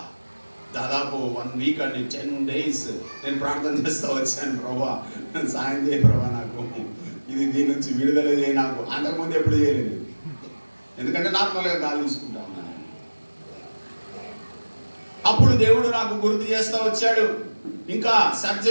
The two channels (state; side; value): inverted; both; correlation -1.00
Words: దాదాపు 1 వీక్ అండి, 10 days నేను ప్రార్థన చేస్తూ వచ్చాను, ప్రభా సాయం చేయ ప్రభా, నాకు దీని నుంచి విడుదల చేయ. నాకు అంతకుముందు ఎప్పుడు చేయలేదు, ఎందుకంటే నార్మల్గా గాలి తీసుకుంటా ఉన్నాను. అప్పుడు దేవుడు నాకు గుర్తు చేస్తూ వచ్చాడు. ఇంకా